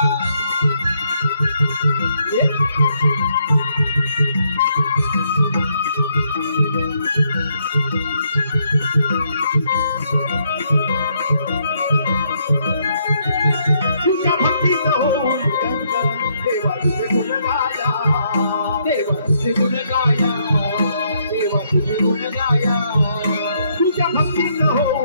तुझ्या भक्तीत होऊन देवा तुझे गुण गाया देवा तुझे गुण गाया देवा तुझे गुण गाया तुझ्या भक्तीत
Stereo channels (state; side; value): inverted; both; correlation -0.73